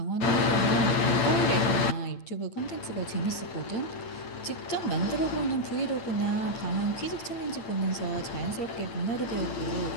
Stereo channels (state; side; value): late; right; 8.9 ms